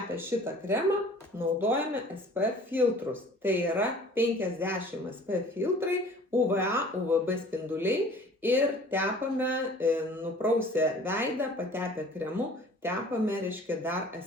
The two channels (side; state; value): both; normal; correlation 0.49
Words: šitą kremą naudojame SPF filtrus. Tai yra 50 SPF filtrai, UVA, UVB spinduliai. Ir tepame, nuprausę veidą, patepę kremu, tepame, reiškia, dar